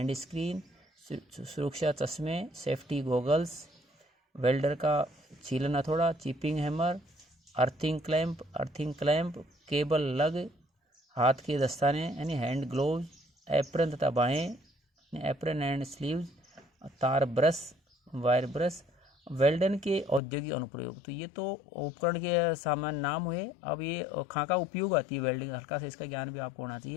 स्क्रीन, सुरक्षा चश्मे, सेफ्टी गॉगल्स, वेल्डर का छीलन हथौड़ा, chipping hammer, earthing clamp, cable लग, हाथ के दस्ताने यानी हैंड ग्लोव्स, एप्रन तथा बाहें, एप्रन एंड स्लीव्स, तार ब्रश, वायर ब्रश। वेल्डन के औद्योगिक अनुप्रयोग, तो ये तो उपकरण के सामान्य नाम हुए। अब ये खाका उपयोग आती है वेल्डिंग, हल्का सा इसका ज्ञान भी आपको होना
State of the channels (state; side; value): drops out; right; at 20.2 s